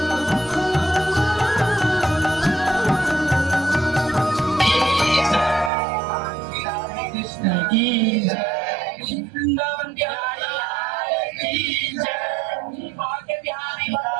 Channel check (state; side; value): drops out; left; at 5.7 s